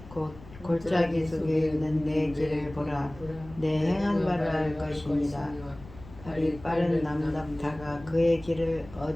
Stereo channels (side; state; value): left; noise; rumble, 18 dB below the sound